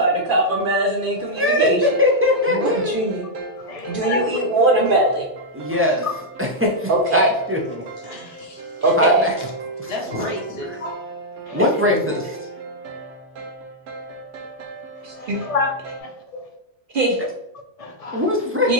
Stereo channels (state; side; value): normal; both; correlation -0.06